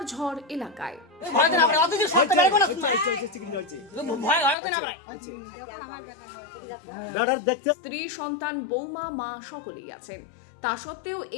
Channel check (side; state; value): right; drops out; at 4.5 s